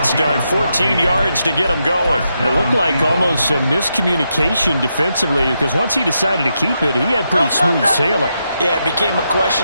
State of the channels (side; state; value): both; inverted; correlation -0.83